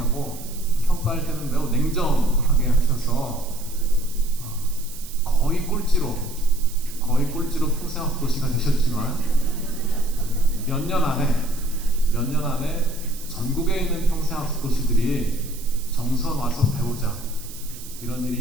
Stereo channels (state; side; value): noise; right; hiss, 15 dB below the sound